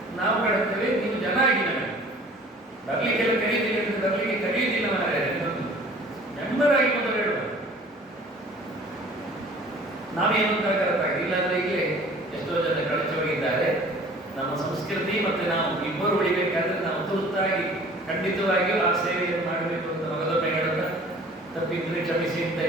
ನಾವು ಕಟ್ತೇವೆ. ನೀವು ಜನ ಆಗಿ ನಮಗೆ ಬರ್ಲಿಕ್ಕೆಲ್ಲ ಕರೀತೀವಿ ಅಂತ ಬರ್ಲಿಕ್ಕೆ ಕರೆಯುವುದಿಲ್ಲ. ಮೆಂಬರ್ ಆಗಿ ಮೊದಲು ಹೇಳುವ ನಾವೇನು ಅಂತ ಕರೆಕ್ಟಾಗಿ. ಇಲ್ಲಾಂದ್ರೆ ಈಗಲೇ ಎಷ್ಟೋ ಜನ ಕಳಚಿ ಹೋಗಿದ್ದಾರೆ. ನಮ್ಮ ಸಂಸ್ಕೃತಿ ಮತ್ತು ನಾವು ಇಬ್ಬರು ಉಳಿಬೇಕಾದ್ರೆ ನಾವು ತುರ್ತಾಗಿ ಖಂಡಿತವಾಗಿಯೂ ಆ ಸೇವೆಯನ್ನು ಮಾಡಬೇಕು ಅಂತ ಮಗದೊಮ್ಮೆ ಹೇಳುತ್ತಾ ತಪ್ಪಿದ್ರೆ ಕ್ಷಮಿಸಿ ಅಂತ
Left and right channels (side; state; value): both; normal; correlation 0.49